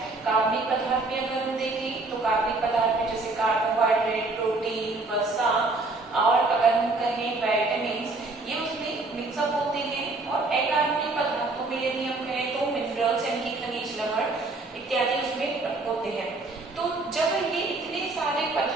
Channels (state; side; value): quieter; left; 3.3 dB